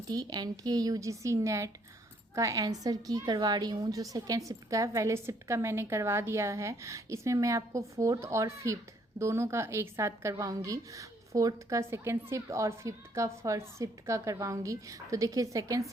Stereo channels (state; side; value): normal; both; correlation 0.67